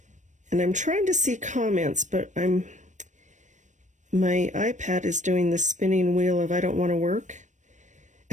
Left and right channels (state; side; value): late; left; 0.35 ms